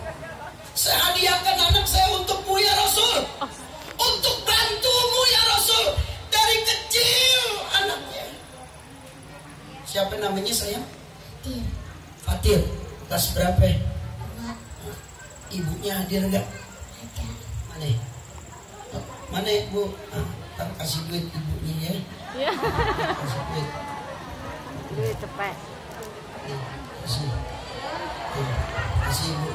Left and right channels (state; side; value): identical; both; correlation 1.00